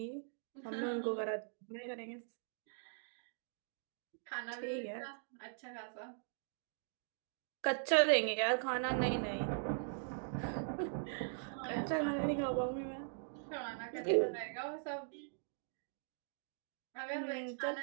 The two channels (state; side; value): silent; left; digital silence